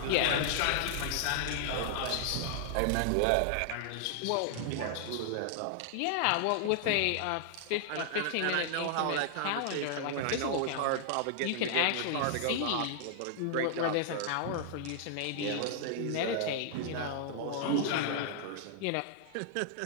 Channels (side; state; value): both; different; correlation -0.01